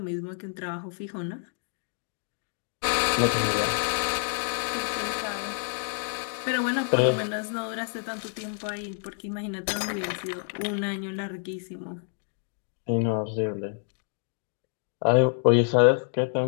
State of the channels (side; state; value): right; silent; 55 dB below the other